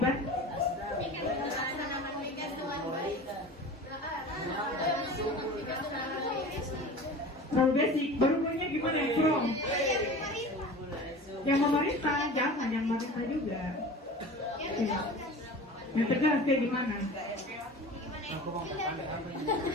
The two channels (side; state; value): both; normal; correlation 0.37